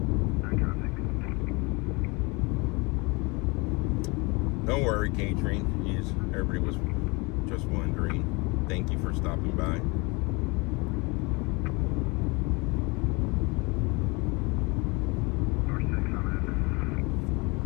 Don't worry, Catherine. Everybody was just wondering. Thank you for stopping by.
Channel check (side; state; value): right; quieter; 27.3 dB